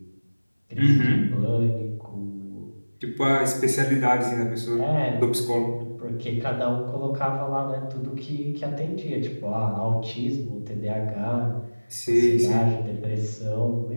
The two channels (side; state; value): both; inverted; correlation -1.00